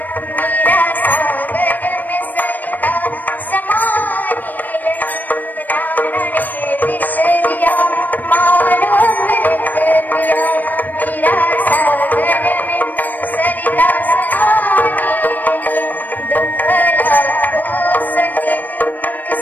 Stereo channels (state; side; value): late; right; 0.086 ms